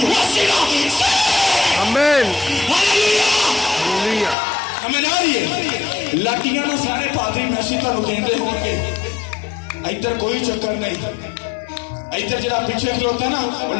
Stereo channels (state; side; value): drops out; right; at 4.4 s